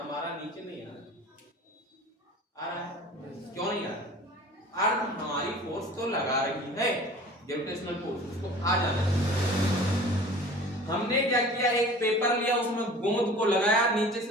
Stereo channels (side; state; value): both; normal; correlation 0.43